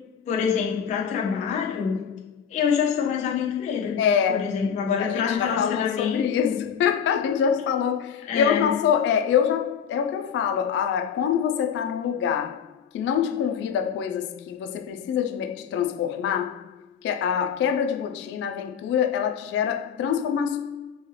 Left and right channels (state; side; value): quieter; right; 7.6 dB